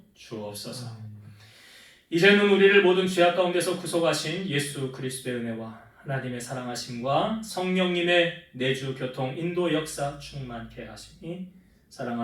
주옵소서. 이제는 우리를 모든 죄악 가운데서 구속하신 예수 그리스도의 은혜와 하나님의 사랑하심과 성령님의 내주 교통 인도 역사 충만케 하시니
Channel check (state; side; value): identical; both; correlation 1.00